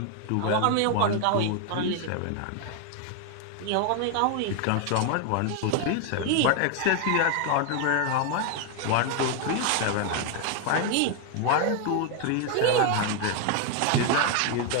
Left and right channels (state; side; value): different; both; correlation 0.01